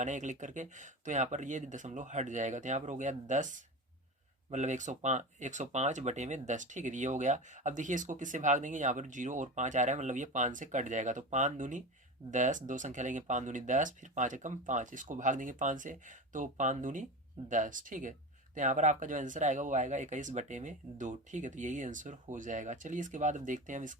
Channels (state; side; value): normal; both; correlation 0.26